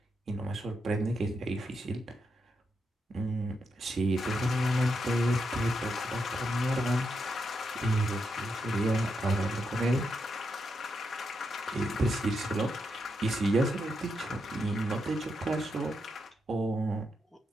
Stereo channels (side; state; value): both; normal; correlation 0.83